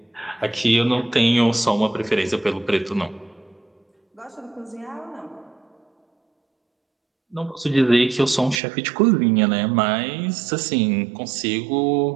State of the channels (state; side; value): drops out; left; at 8.6 s